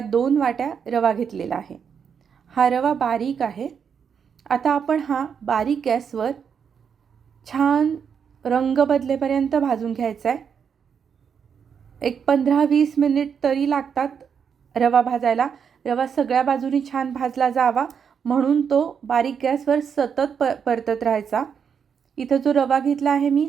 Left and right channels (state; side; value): quieter; left; 7.0 dB